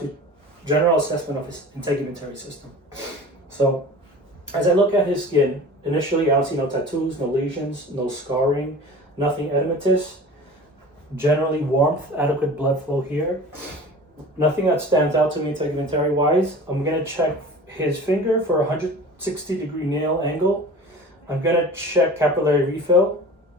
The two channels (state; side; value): normal; both; correlation 0.39